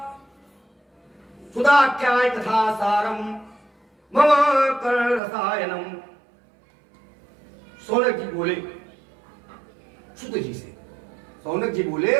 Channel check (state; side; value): drops out; left; at 5.2 s